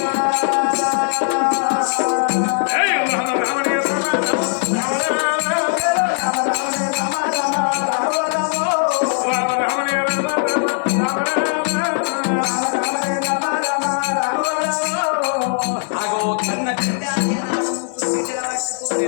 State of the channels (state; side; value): silent; right; 61 dB below the other